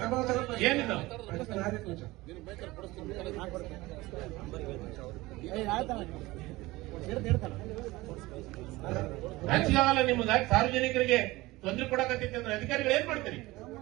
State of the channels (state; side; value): quieter; left; 20.1 dB